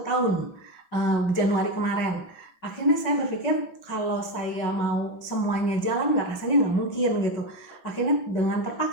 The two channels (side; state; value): right; late; 5.8 ms